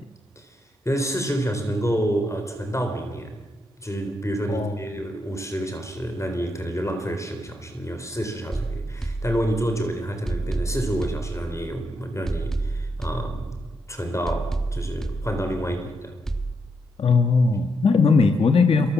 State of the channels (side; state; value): both; normal; correlation 0.81